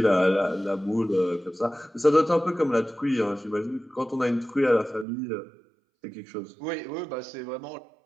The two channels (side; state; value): left; drops out; at 5.1 s